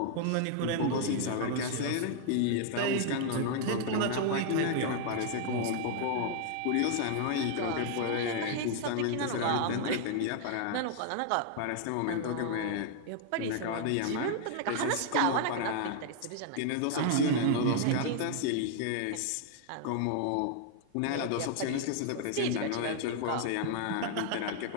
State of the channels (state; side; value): different; both; correlation 0.00